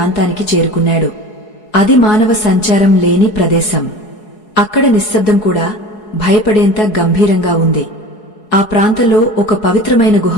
చేరుకున్నాడు. అది మానవ సంచారం లేని ప్రదేశం. అక్కడ నిశ్శబ్దం కూడా భయపడేంత గంభీరంగా ఉంది. ఆ ప్రాంతంలో ఒక పవిత్రమైన గుహ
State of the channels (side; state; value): right; late; 4.7 ms